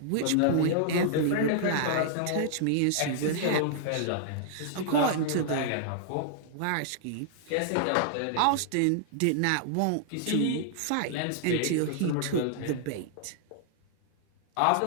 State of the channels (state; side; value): different; both; correlation -0.01